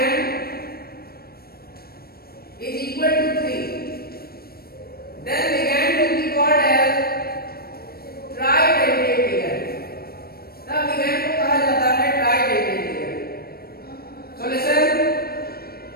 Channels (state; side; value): late; right; 0.44 ms